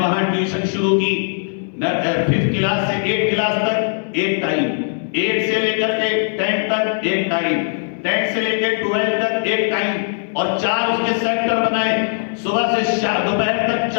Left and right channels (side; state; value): right; silent; digital silence